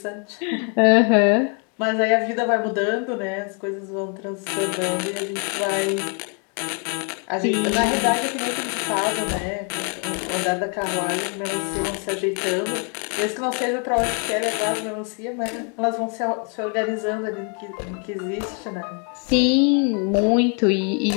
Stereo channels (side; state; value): right; quieter; 38.5 dB